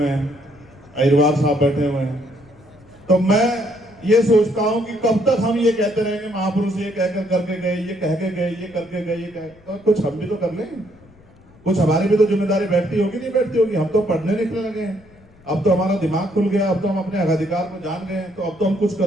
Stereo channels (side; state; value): left; noise; rumble, 27 dB below the sound